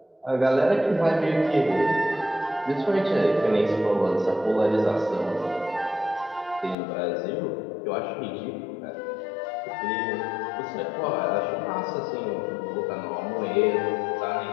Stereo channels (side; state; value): right; drops out; at 6.8 s